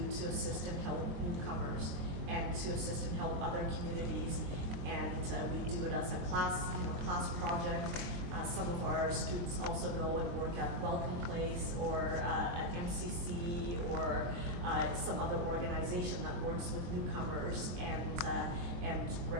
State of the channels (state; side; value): late; left; 23 ms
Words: to assist and help newcomers and to assist and help other communities. And we do it as a class project. Some of our students also go and work at Welcome Place or at MCC or some other organization that works with newcomers and